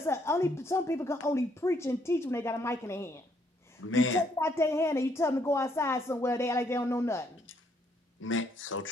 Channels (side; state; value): both; normal; correlation 0.70